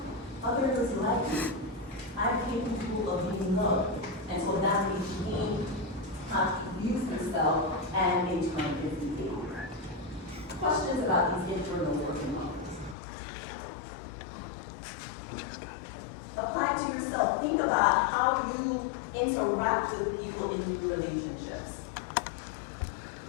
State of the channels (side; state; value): right; drops out; at 13.0 s